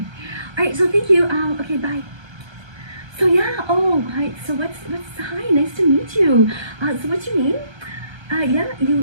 All right, so thank you. Okay, bye. So yeah, oh, hi. So hi, nice to meet you. So what's your name? Yeah,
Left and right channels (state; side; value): late; left; 1.3 ms